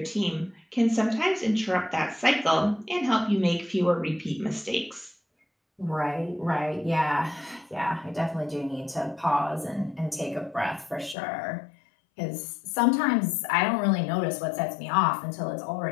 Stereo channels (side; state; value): right; drops out; at 11.2 s